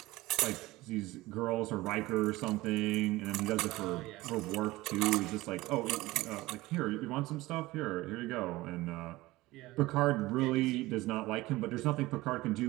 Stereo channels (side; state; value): left; quieter; 19.1 dB